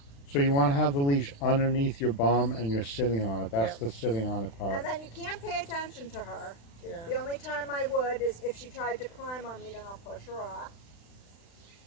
So you want to have the leash underneath your bum and you're sitting on it. That's the sitting on it part. And then you can't pay attention to her. Yeah. The only time I would is if she tried to climb on me, then I'll push her off.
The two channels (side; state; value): right; late; 35 ms